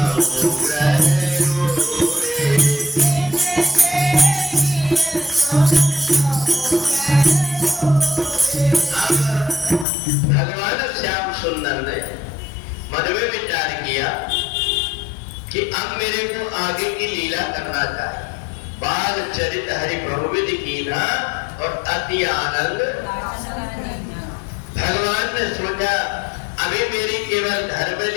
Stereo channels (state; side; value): drops out; right; at 9.9 s